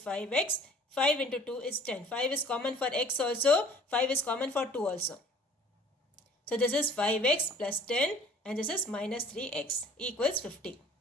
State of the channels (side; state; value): both; normal; correlation 0.52